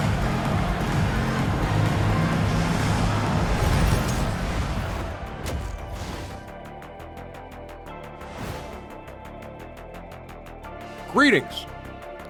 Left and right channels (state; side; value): identical; both; correlation 1.00